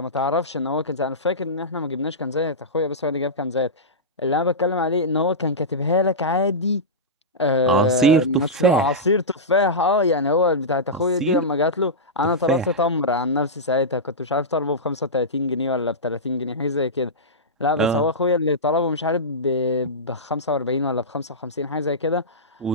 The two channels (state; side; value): normal; both; correlation -0.14